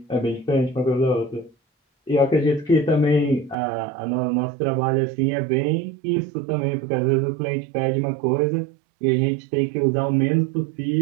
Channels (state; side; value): drops out; left; at 3.6 s